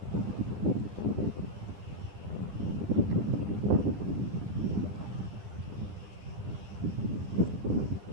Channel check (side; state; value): left; late; 9.9 ms